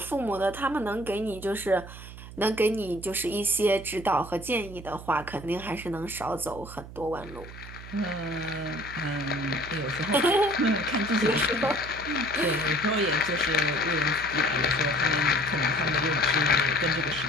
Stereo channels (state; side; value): noise; right; hum, 14 dB below the sound